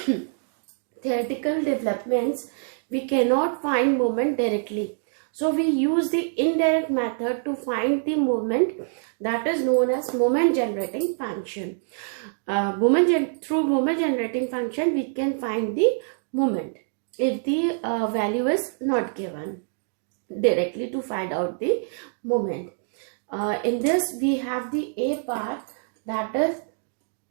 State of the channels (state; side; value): silent; left; digital silence